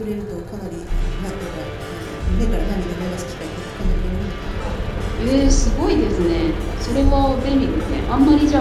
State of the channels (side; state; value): both; identical; correlation 1.00